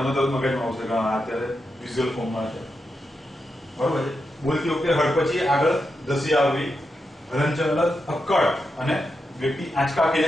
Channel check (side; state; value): both; normal; correlation 0.86